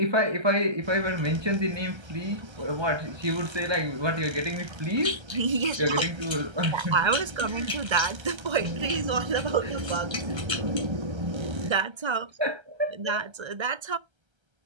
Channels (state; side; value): late; left; 1.3 ms